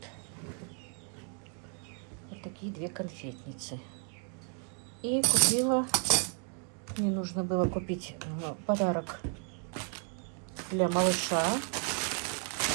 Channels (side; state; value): left; quieter; 39.3 dB